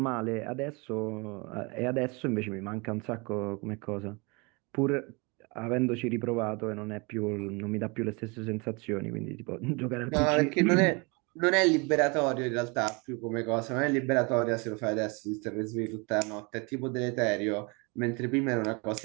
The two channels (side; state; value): left; quieter; 29.7 dB